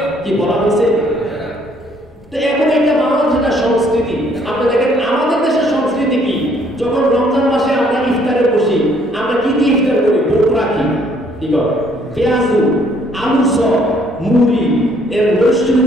কি বলা হয়েছে? তো এখন এটা বাংলাদেশের সংস্কৃতি। আপনি দেখেন আমাদের দেশের সংস্কৃতি কি, যখন রমজান মাসে আমরা ইফতারে বসি, আমরা কি দিয়ে ইফতার করি? বোট রাখি, কি করে পেঁয়াজু, আলু চপ, মুড়ি এর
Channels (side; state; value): both; normal; correlation 0.64